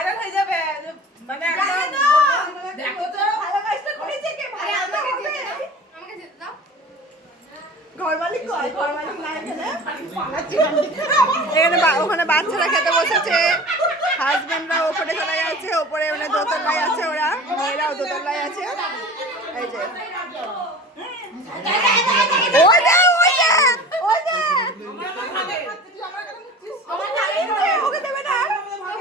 হয়ে যাবে। মানে একদম দেখো তো হ্যালো গাইসটা করেছে কে? ভাই আমাকে যেতে দাও। ঘর মালিক কয়? ঘর মালিক না এখানে? এখানে ওখানে বাচ্চারা খেতে বসেছে, হাজবেন্ডরা ওপরে চলে গেছে, ওপরে মানে দোতলায় আছে, ওরা মেয়েরাও দোতলায় আছে। এই যে ওই যে ওই যে ওই যে ওকে দেবে না।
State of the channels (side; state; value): both; normal; correlation 0.38